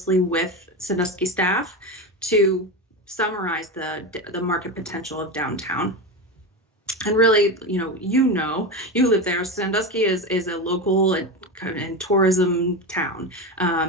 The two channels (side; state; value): both; normal; correlation 0.19